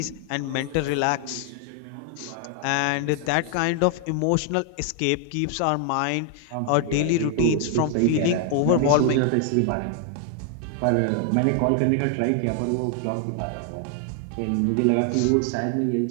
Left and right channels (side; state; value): both; different; correlation 0.00